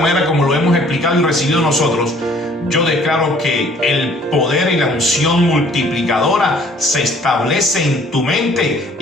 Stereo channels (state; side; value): normal; both; correlation 0.57